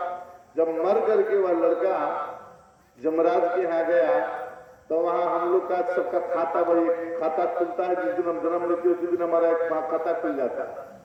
जब मर करके वह लड़का जमराज के यहाँ गया तो वहां हम लोग का सबका खाता, वही खाता खुलता है जिस दिन हम जन्म लेते हैं उसी दिन हमारा एक खाता खुल जाता है,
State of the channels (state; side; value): identical; both; correlation 1.00